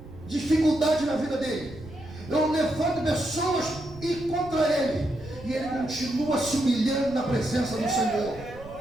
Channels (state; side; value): noise; right; rumble, 17 dB below the sound